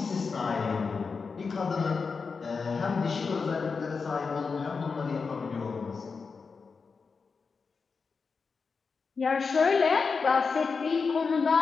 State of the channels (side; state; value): right; quieter; 5.0 dB